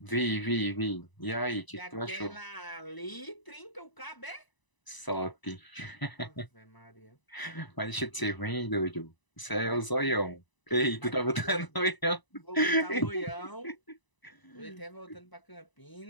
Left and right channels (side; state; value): right; late; 1.0 ms